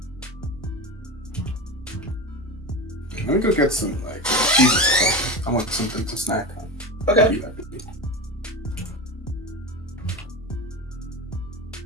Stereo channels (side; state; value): both; normal; correlation 0.25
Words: Let me go get some cheese. I want something to snack on. Okay.